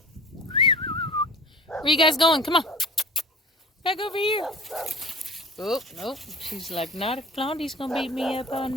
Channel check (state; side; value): normal; both; correlation 0.40